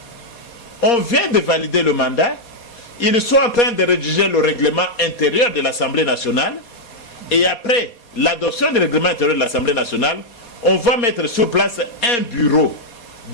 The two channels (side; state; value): right; late; 4.2 ms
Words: On vient de valider le mandat, ils sont en train de rédiger le règlement intérieur de l'Assemblée nationale, et après l'adoption du règlement intérieur de l'Assemblée nationale, on va mettre sur place un bureau